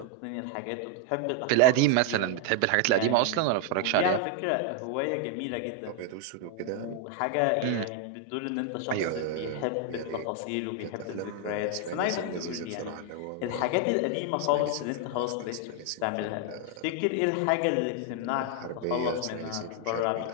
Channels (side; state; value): both; different; correlation 0.00